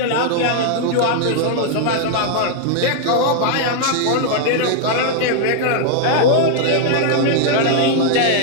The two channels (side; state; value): both; different; correlation 0.00